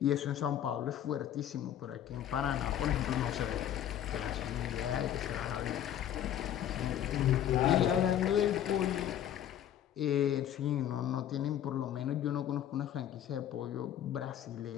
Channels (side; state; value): right; quieter; 10.8 dB